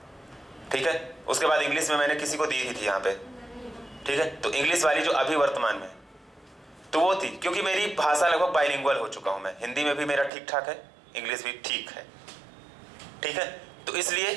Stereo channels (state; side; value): drops out; left; at 10.3 s